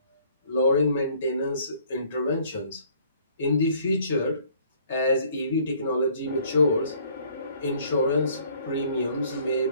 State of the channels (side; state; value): both; inverted; correlation -0.59